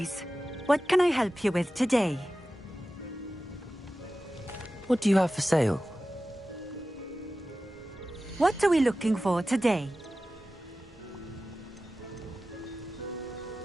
What can I help you with today? What do you have for sale? What are we looking for today?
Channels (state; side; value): normal; both; correlation 0.95